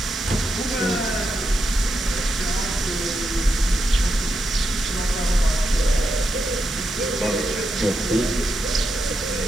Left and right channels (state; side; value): normal; both; correlation 0.85